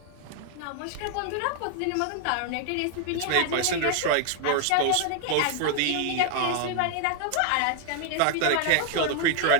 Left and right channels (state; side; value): different; both; correlation 0.00